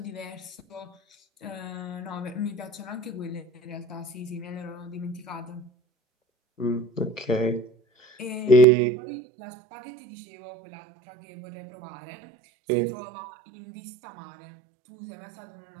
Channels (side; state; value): left; drops out; at 8.7 s